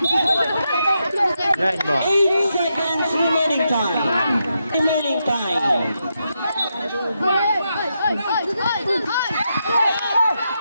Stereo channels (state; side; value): inverted; both; correlation -0.84